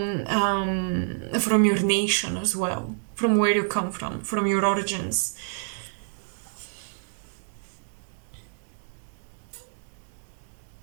your nation as well, from where you come from your origins.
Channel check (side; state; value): left; silent; digital silence